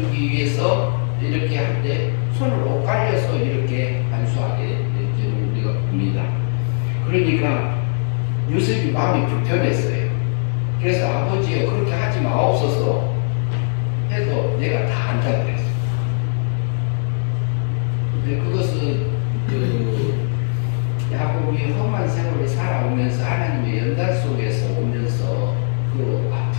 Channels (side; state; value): right; silent; 66 dB below the other